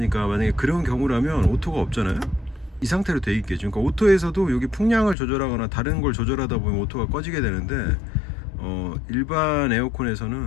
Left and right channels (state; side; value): drops out; right; at 5.2 s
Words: 만약에 그런 경우라면 오토가 없잖아요. 이 상태로 돼 있겠죠. 그러니까 오토에서도 여기 풍량을 조절하거나 다른 걸 조절하다 보면 오토가 꺼지게 되는데, 일반